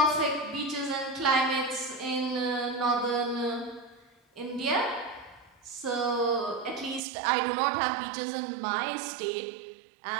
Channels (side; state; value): left; drops out; at 7.0 s